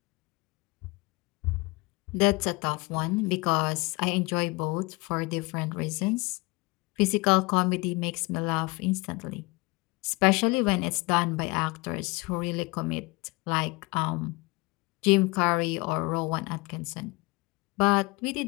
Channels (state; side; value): quieter; right; 25.2 dB